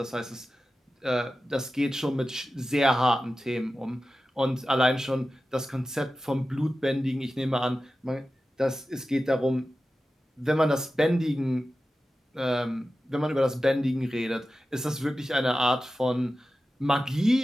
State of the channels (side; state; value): both; normal; correlation 0.94